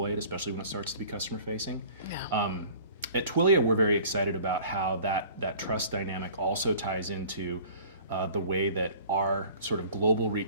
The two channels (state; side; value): inverted; both; correlation -0.47